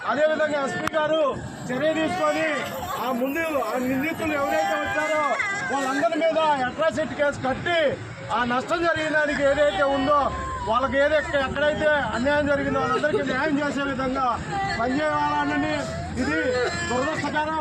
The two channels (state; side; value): identical; both; correlation 1.00